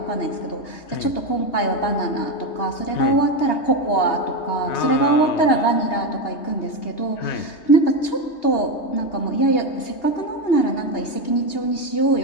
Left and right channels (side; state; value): right; late; 2.8 ms